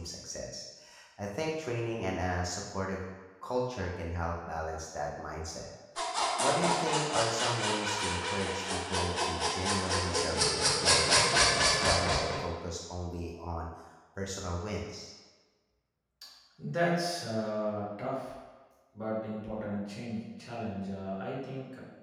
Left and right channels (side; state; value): both; identical; correlation 1.00